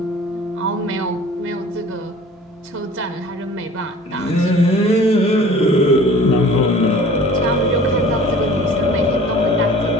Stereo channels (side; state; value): both; normal; correlation 0.46